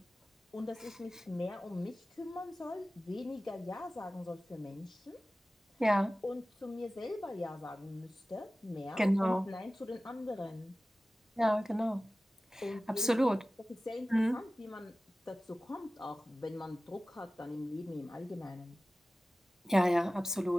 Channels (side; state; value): both; normal; correlation 0.96